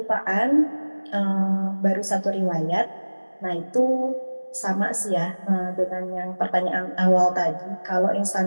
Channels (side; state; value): both; inverted; correlation -1.00